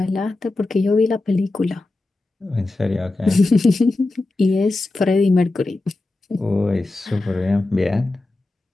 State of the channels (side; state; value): right; quieter; 3.0 dB